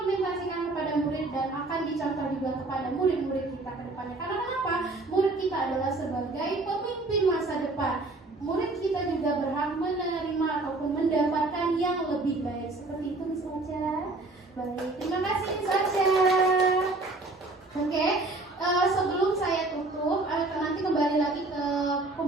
kepada murid dan akan dicontoh juga kepada murid-murid kita ke depannya. Karena kenapa? Murid kita adalah sebagai pemimpin masa depan. Murid kita juga berhak menerima ataupun mendapatkan yang lebih baik. Seperti itu, Miss Ocha. Baik, terima kasih Miss Aca. Oke, sebelum saya tutup, nanti kembali lagi ke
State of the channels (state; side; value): quieter; left; 3.1 dB